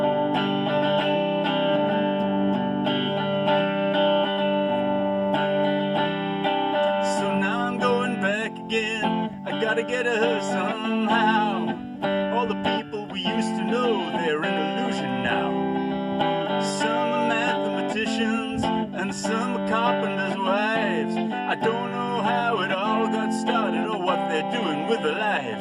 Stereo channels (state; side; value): identical; both; correlation 1.00